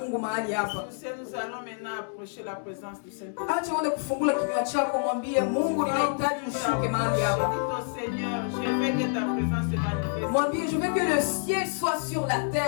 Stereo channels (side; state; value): right; silent; 60 dB below the other